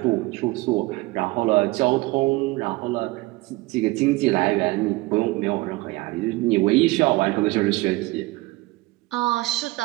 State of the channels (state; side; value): quieter; left; 21.5 dB